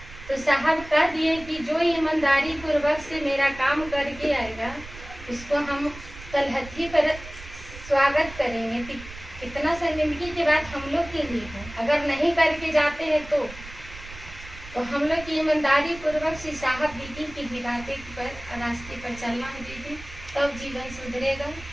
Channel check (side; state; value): right; noise; rumble, 15 dB below the sound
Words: तो साहब कह दिए कि जो ईमानदारी पूर्वक से मेरा काम करके आएगा उसको हम तलहथी पर स्वागत करेंगे। कितना शर्मिंदगी की बात हम लोग के लिए है, अगर नहीं करके जाते हैं तो हम लोग की ईमानदारी पूर्वक से साहब दीदी की हिदायत पर रास्ते पर चलना है दीदी, तब जीवन सुधरेगा।